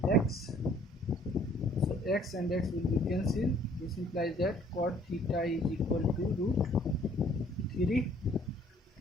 x. So x and x will be cancelled. This implies that cot theta is equal to root 3,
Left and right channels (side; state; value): both; normal; correlation 0.59